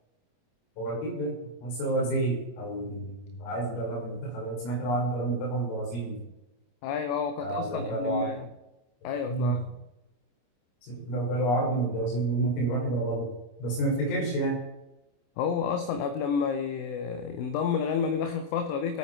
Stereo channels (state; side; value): late; right; 25 ms